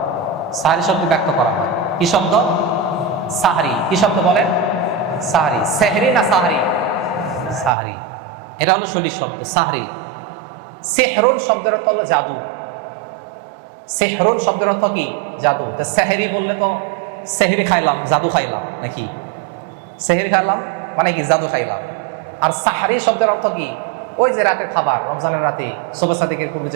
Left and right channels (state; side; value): drops out; left; at 7.7 s